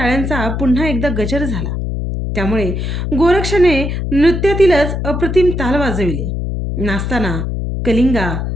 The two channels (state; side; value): noise; left; hum, 3 dB below the sound